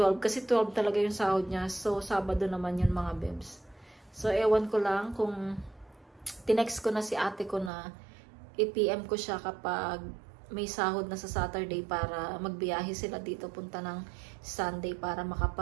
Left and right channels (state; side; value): drops out; left; at 7.7 s